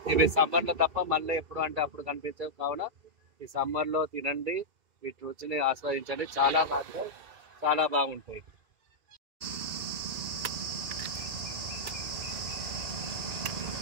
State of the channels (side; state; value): left; late; 2.3 ms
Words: ఇవి సమ్మర్లో తప్ప మళ్ళీ ఎప్పుడు అంటే అప్పుడు కనిపించవు. కావున ఈ సమ్మర్లో తినండి, వీటి రుచిని ఆస్వాదించండి. చాలా బాగుంటాయి, చాలా బాగుంటాయి.